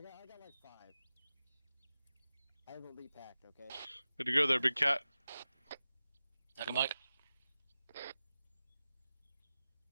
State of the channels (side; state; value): both; inverted; correlation -0.94